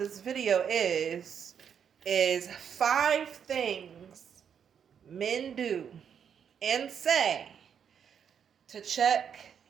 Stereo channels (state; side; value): quieter; left; 7.8 dB